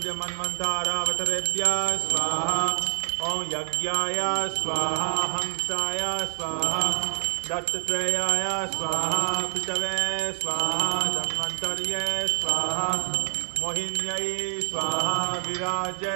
मन्वन्तरावतारेभ्यः स्वाहा ओम यज्ञाय स्वाहा हंसाय स्वाहा दत्तात्रेयाय स्वाहा पितवे स्वाहा धन्वन्तर्ये स्वाहा मोहिन्यै स्वाहा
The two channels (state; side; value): silent; left; digital silence